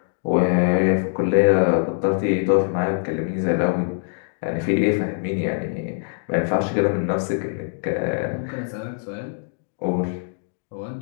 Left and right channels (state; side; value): silent; right; digital silence